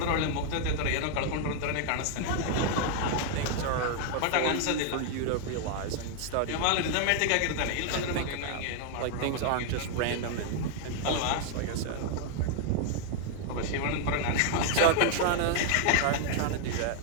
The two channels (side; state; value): both; different; correlation 0.00